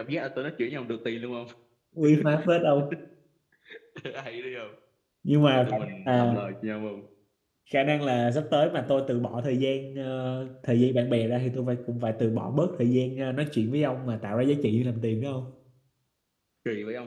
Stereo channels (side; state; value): both; identical; correlation 1.00